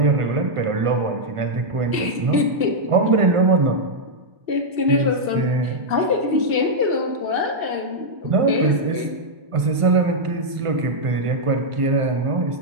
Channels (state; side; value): late; left; 1.5 ms